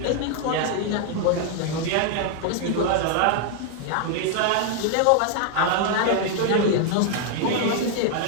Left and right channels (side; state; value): both; different; correlation 0.00